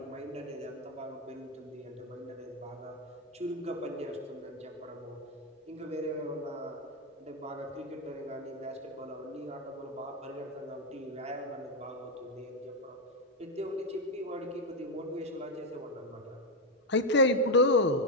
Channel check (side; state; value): both; normal; correlation 0.03